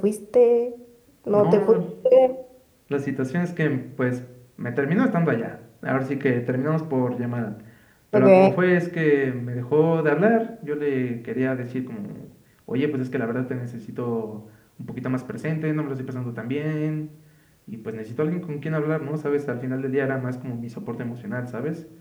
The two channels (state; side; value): identical; both; correlation 1.00